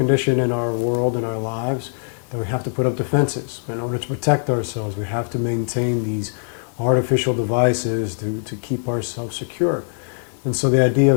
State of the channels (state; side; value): silent; right; digital silence